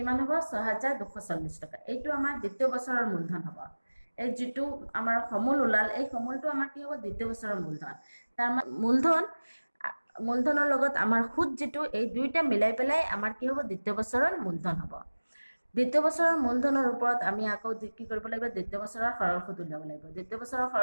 হ'ব 6240 টকা এইটো আমাৰ দ্বিতীয় বছৰৰ মূলধন হ'ব এই যেটো আমাৰ সমল উলাল এই সমলটো আমাৰ কি হ'ব দ্বিতীয় বছৰৰ মূলধন তাৰ মূলধনৰ লগত আমাৰ সুত যেটো এই দুইটা মিলাই পেলাই আমাৰ কি হ'ব দ্বিতীয় বছৰৰ মূলধন হ'ব দ্বিতীয় বছৰৰ মূলধনৰ ওপৰত আমি আকৌ কি কৰিব লাগিব দ্বিতীয় বছৰৰ সৰল সুত উলিয়াব লাগিব দ্বিতীয় বছৰৰ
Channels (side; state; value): both; inverted; correlation -1.00